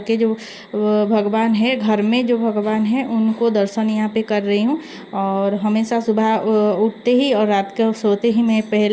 के जो भगवान है, घर में जो भगवान है, उनको दर्शन यहाँ पे कर रही हूँ। और हमेशा सुबह उठते ही और रात को सोते ही मैं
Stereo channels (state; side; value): identical; both; correlation 1.00